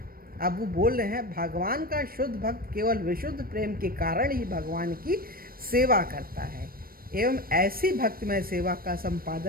अब वो बोल रहे हैं भगवान का शुद्ध भक्त केवल विशुद्ध प्रेम के कारण ही भगवान की सेवा करता है, एवं ऐसी भक्तिमय सेवा का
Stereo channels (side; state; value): left; late; 0.43 ms